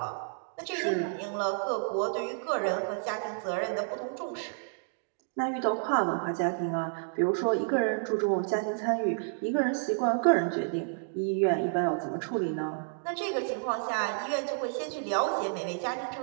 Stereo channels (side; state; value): left; silent; digital silence